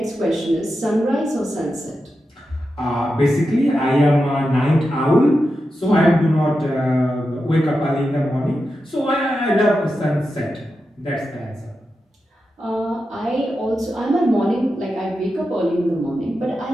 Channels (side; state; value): both; normal; correlation 0.89